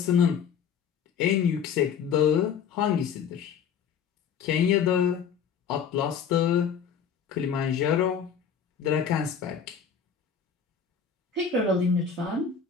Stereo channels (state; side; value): quieter; right; 7.2 dB